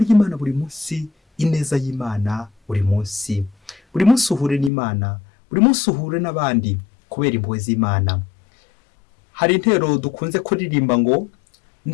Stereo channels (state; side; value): drops out; right; at 4.7 s